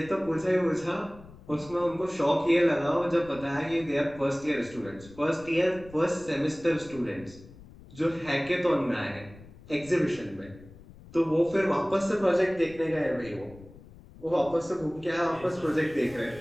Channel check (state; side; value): noise; left; rumble, 20 dB below the sound